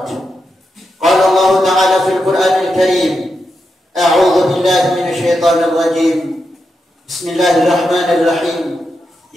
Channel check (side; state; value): both; normal; correlation 0.86